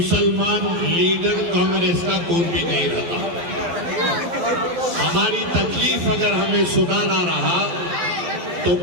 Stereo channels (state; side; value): late; left; 12 ms